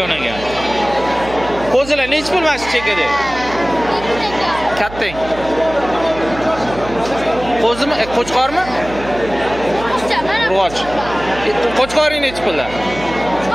ekan. Qo'zilar nech pul mana shu chekada? Kattang. Qo'zimi? Qo'chqormi? Urg'och. Qo'chqoring nech pullar?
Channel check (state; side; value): noise; right; hum, 14 dB below the sound